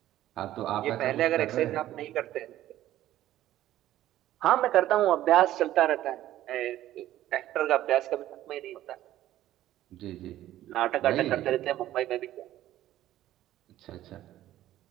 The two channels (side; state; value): left; quieter; 13.7 dB